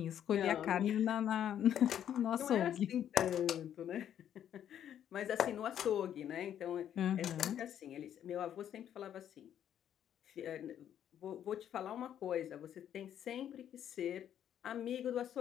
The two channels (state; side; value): quieter; right; 10.0 dB